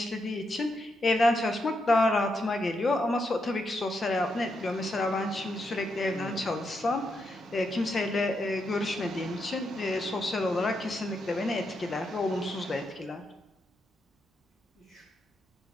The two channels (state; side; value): normal; both; correlation 0.82